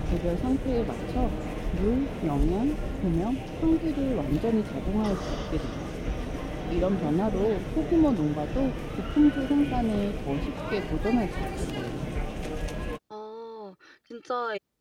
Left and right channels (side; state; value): both; identical; correlation 1.00